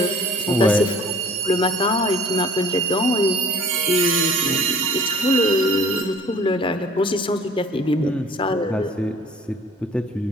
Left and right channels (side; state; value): both; normal; correlation 0.51